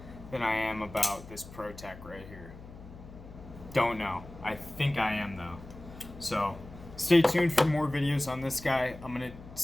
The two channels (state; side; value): noise; left; hum, 16 dB below the sound